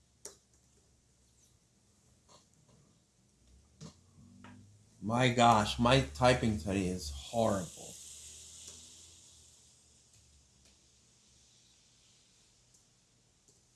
My gosh, my typing today is horrible.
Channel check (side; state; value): both; identical; correlation 1.00